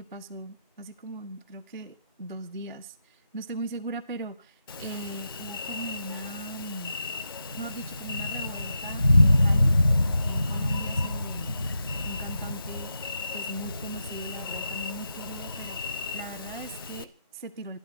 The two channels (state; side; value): inverted; both; correlation -0.85